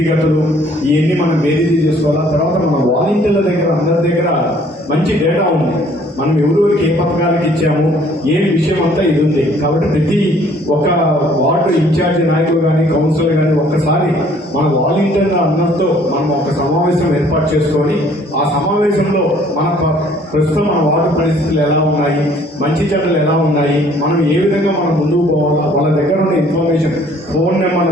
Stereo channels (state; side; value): normal; both; correlation 0.59